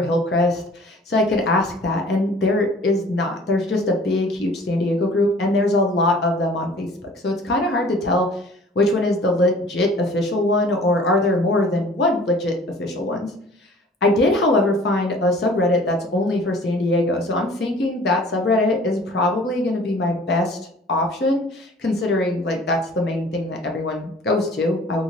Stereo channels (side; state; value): both; normal; correlation 0.50